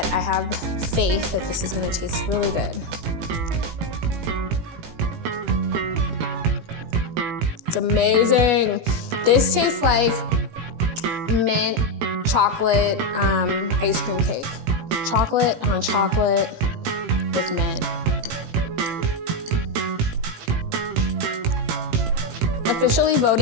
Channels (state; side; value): late; left; 18 ms